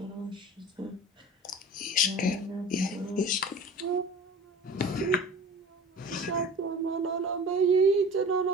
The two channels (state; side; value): normal; both; correlation 0.39